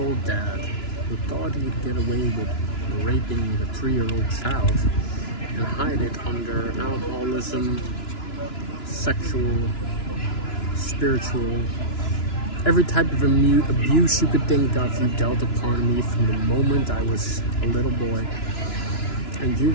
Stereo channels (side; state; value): right; late; 2.9 ms